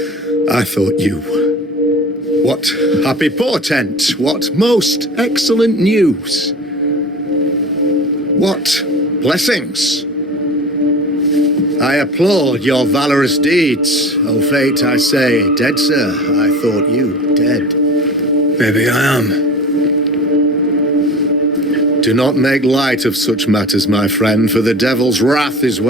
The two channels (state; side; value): normal; both; correlation 0.36